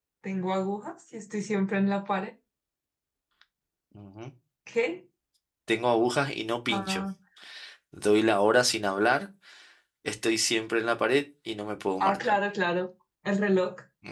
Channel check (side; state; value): both; identical; correlation 1.00